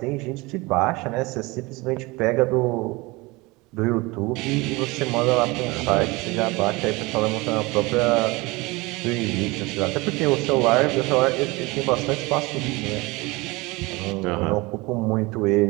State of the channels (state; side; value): quieter; left; 23.6 dB